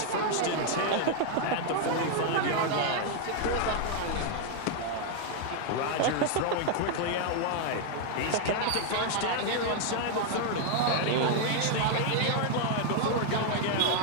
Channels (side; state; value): both; different; correlation 0.00